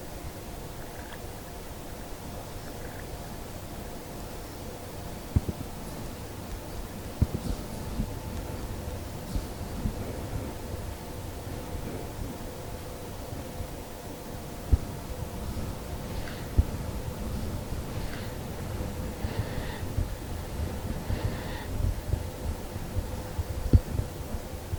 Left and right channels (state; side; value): identical; both; correlation 1.00